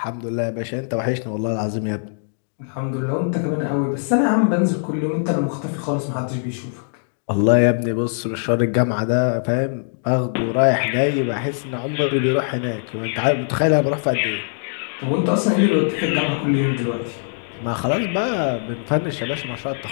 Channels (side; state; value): right; silent; digital silence